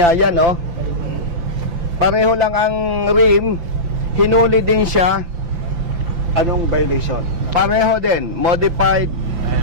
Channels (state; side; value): late; left; 5.8 ms